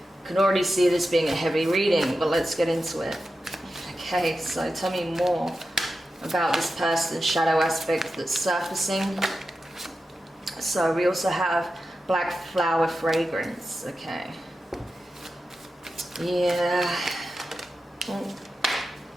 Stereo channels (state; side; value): normal; both; correlation 0.91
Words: can already see this being a heavy reading, but let's get into it. Okay, so tell me more about this person's shadow aspect that's surfacing. So we also have black flower fragrance, okay. Yeah.